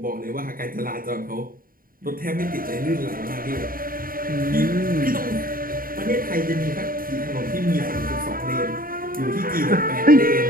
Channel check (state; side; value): late; left; 0.41 ms